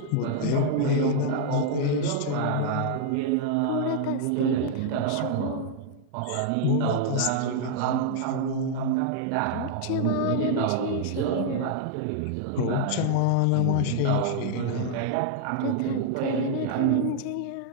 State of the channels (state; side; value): different; both; correlation -0.01